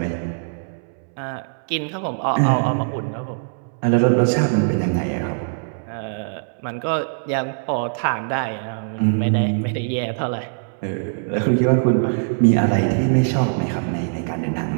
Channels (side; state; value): left; silent; 64 dB below the other